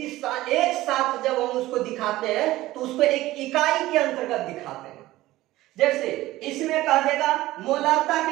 एक साथ जब हम उसको दिखाते हैं तो उसको एक इकाई के अंतर्गत दिखाते हैं। जैसे इसमें कह देगा मोलरता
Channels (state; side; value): quieter; left; 16.8 dB